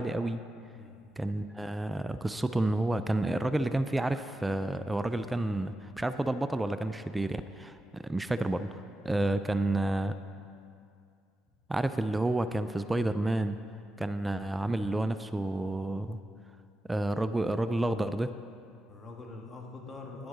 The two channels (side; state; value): both; normal; correlation 0.92